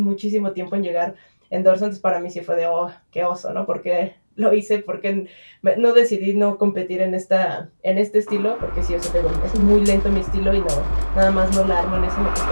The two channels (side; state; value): both; inverted; correlation -1.00